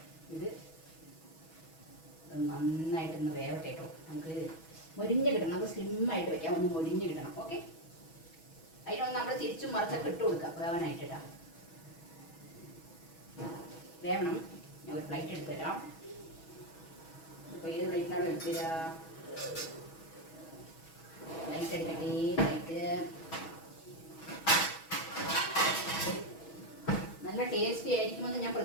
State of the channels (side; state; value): right; late; 6.2 ms